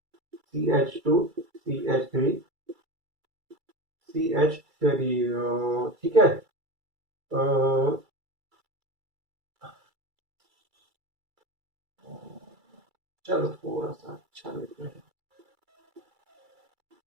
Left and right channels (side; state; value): left; late; 2.3 ms